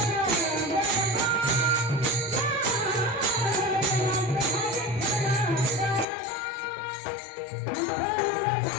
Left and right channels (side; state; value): right; drops out; at 6.1 s